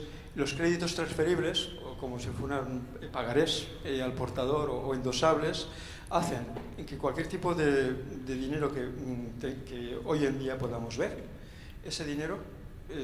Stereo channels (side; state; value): both; identical; correlation 1.00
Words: los créditos transferibles, o como si fueran pagarés al portador o endosables, hacen que cualquier tipo de dinero que hoy en día podamos ver, ese dinero,